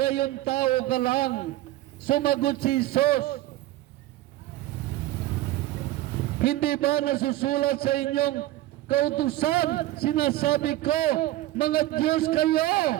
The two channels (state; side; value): quieter; left; 16.0 dB